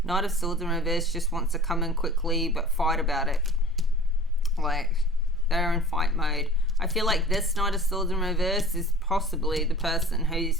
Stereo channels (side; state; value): both; normal; correlation 0.42